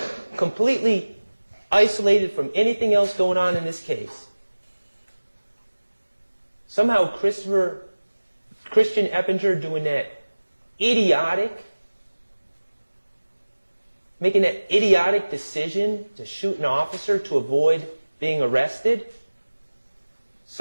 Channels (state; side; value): inverted; both; correlation -1.00